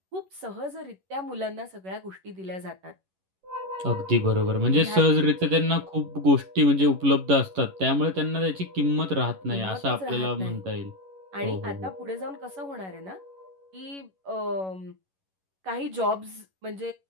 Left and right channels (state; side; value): late; left; 11 ms